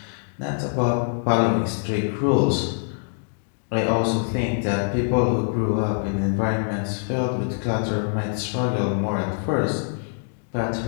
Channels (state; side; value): silent; right; 62 dB below the other